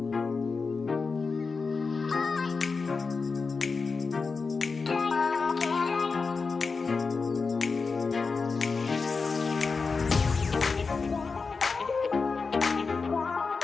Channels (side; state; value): right; quieter; 4.6 dB